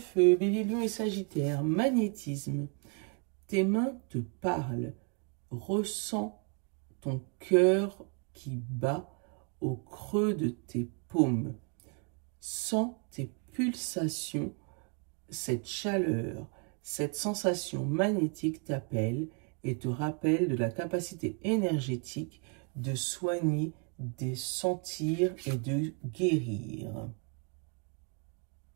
Bélier, Lion et Sagittaire, magnétisme. Tes mains te parlent. Ressens ton cœur qui bat au creux de tes paumes. Sens tes pulsations, cette chaleur, cette sensation magnétique t'appelle et te rappelle de la capacité énergétique de soigner, de sentir et de guérir.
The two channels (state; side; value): quieter; left; 36.6 dB